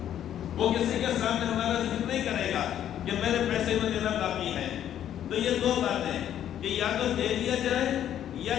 وہ کسی کے سامنے ہمارا ذکر نہیں کرے گا کہ میرے پیسے میں دینا باقی ہے، تو یہ 2 باتیں کہ یا تو دے دیا جائے یا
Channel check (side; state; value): right; quieter; 10.6 dB